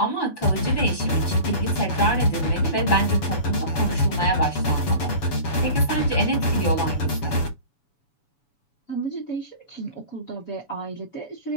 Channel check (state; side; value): late; right; 7.0 ms